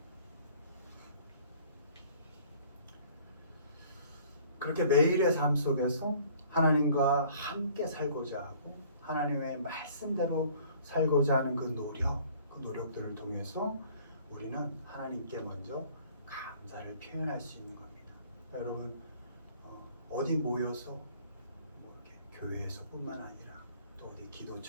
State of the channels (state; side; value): inverted; both; correlation -0.54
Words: 그렇게 매일의 삶 속에서 하나님과 함께 살고자 하고 하나님의 말씀대로 살고자 하는 그 노력들을 통해서 우리는 하나님께 먼저 감사를 표현할 수 있는 겁니다. 여러분 어디 모여서 이렇게 교회에서뿐만 아니라 또 어디